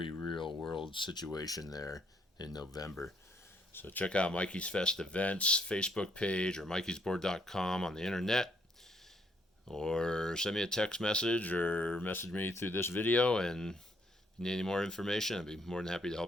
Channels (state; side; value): normal; both; correlation 0.70